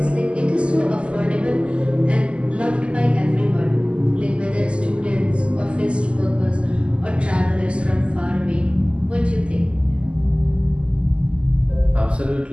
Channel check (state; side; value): late; left; 0.054 ms